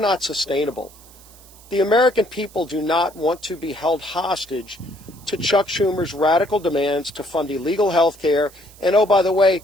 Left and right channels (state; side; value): noise; right; hiss, 23 dB below the sound